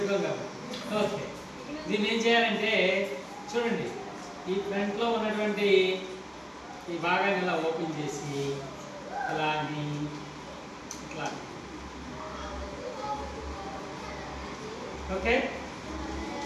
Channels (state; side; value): identical; both; correlation 1.00